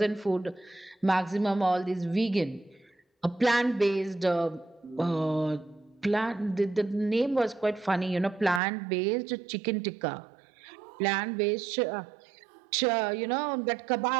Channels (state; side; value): drops out; left; at 8.6 s